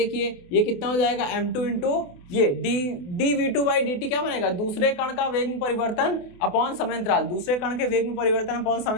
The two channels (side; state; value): right; late; 28 ms